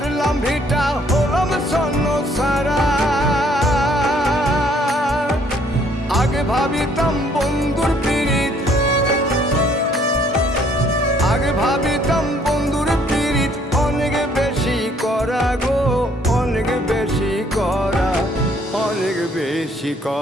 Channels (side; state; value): both; normal; correlation 0.63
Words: ভিটা, হলাম স্বর্ণ সারা। আগে ভাবিতাম বন্ধুর পীড়িত, আগে ভাবিতাম বন্ধুর পীড়িত অনেক বেশি করা গো, অনেক বেশি করা, অনেক বেশি